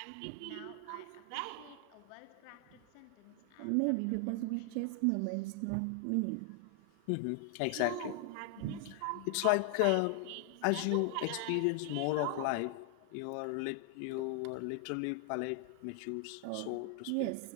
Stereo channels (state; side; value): different; both; correlation 0.00